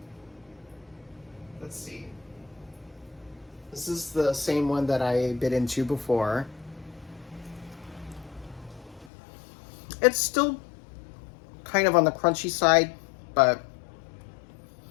let's see. This is the same one that I bit into before. It's still kind of on the crunchy side, but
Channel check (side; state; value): right; drops out; at 9.1 s